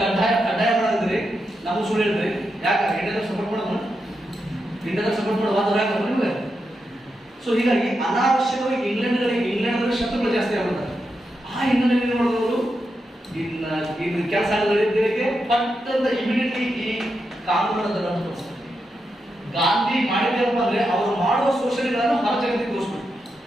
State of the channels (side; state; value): both; normal; correlation 0.86